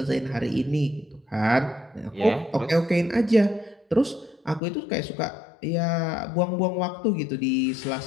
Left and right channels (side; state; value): right; drops out; at 4.6 s